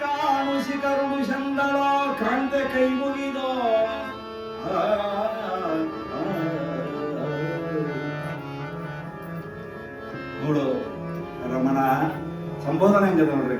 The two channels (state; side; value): identical; both; correlation 1.00